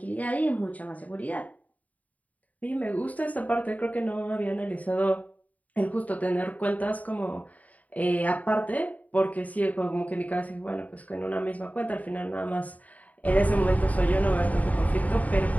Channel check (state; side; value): late; right; 0.072 ms